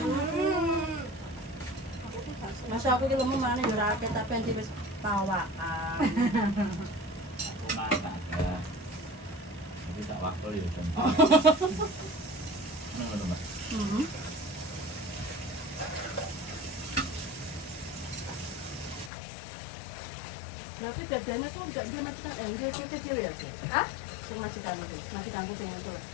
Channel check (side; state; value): right; drops out; at 19.1 s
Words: masa aku ki lemu mana yo ora akeh tapi anti wis pawakan. Aku mata ya. Tapi tak waktu ya kan. Ngono Mas. Berarti bedanya tuh enggak dia majikan dia kecil ya. Hah? Majikanku sing itu.